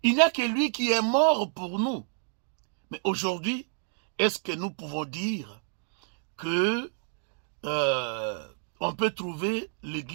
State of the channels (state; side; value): silent; left; 58 dB below the other